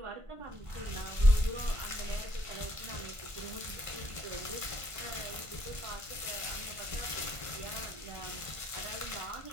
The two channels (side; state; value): left; late; 1.5 ms